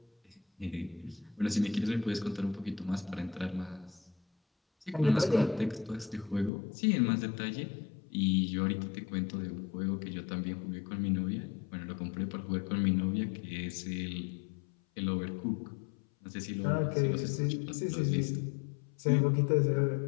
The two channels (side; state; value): right; drops out; at 6.5 s